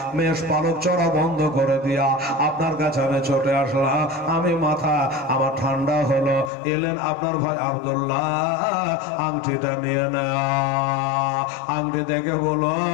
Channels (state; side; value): drops out; right; at 6.5 s